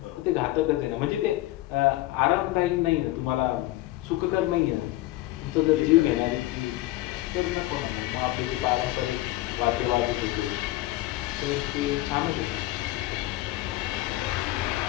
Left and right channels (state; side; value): quieter; right; 17.3 dB